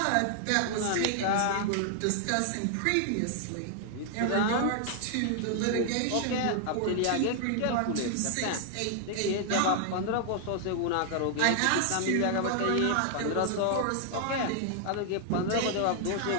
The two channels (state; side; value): different; both; correlation 0.00